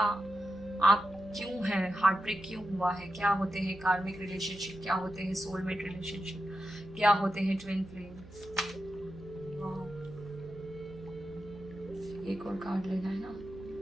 क्यों हैं, हार्ट ब्रेक क्यों हुआ है, क्या होते हैं कार्मिक रिलेशनशिप, क्या होते हैं सोलमेट रिलेशनशिप, क्या होते हैं ट्विन फ्लेम। एक और कार्ड लेना है ना,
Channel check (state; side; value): noise; right; hum, 18 dB below the sound